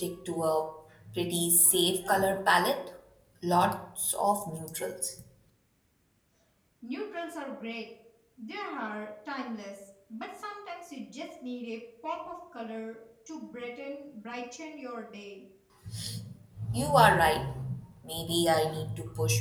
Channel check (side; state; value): both; identical; correlation 1.00